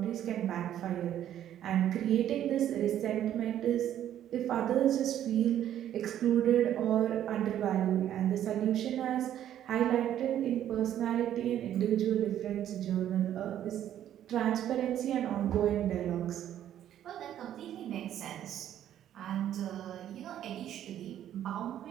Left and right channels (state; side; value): quieter; left; 11.1 dB